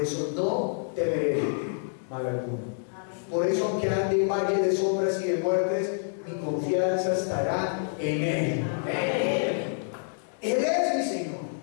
no temeré mal alguno. Por eso, aunque ande en valle de sombras y de muertes, mi confianza estará en Él. Él es mi Señor,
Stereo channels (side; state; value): right; silent; 60 dB below the other